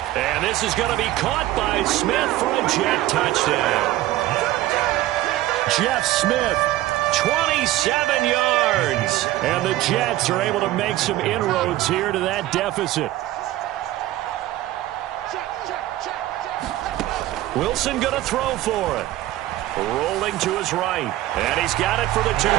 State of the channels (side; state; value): left; quieter; 15.5 dB